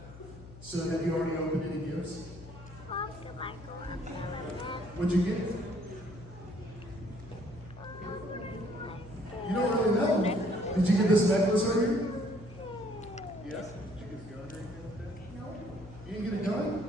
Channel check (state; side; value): noise; left; hum, 16 dB below the sound